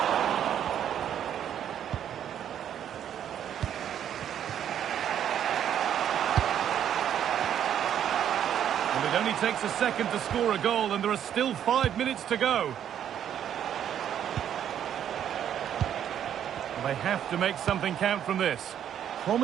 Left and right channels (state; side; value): quieter; left; 9.8 dB